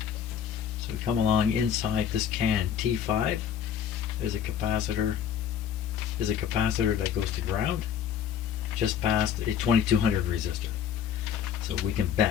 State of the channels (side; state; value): right; quieter; 8.6 dB